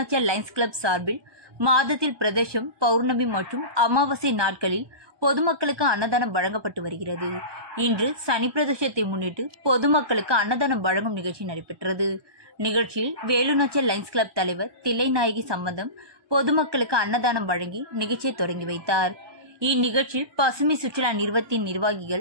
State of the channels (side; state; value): left; late; 1.2 ms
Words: லைன்ஸ் கிளப் சார்பில் மாதத்தில் பிரதோஷம், பௌர்ணமி மற்றும் அமாவாசை நாட்களில் பொதுமக்களுக்கு அன்னதானம் வழங்கப்பட்டு வருகிறது. இன்று சனி பிரதோஷத்தை முன்னிட்டு பொதுமக்களுக்கு அன்னதானம் வழங்கும் நிகழ்ச்சி நடைபெற்றது. நிகழ்ச்சியில் வேலுநாச்சியார் லைன்ஸ் கிளப் தலைவர் தில்லைநாயகி சம்பந்தம் பொதுமக்களுக்கு அன்னதானம் வழங்கி நிகழ்ச்சியை தொடங்கி வைத்தார். இந்நிகழ்ச்சியில் பசுமை சுற்றுலா நிறுவனத்தின்